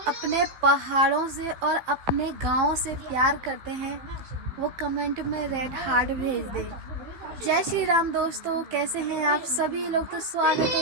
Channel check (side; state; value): left; late; 15 ms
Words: अपने पहाड़ों से और अपने गाँव से प्यार करते हैं वो कमेंट में रेड हार्ट भेज दे। जय श्री राम दोस्तों, कैसे हैं आप सभी लोग। तो स्वागत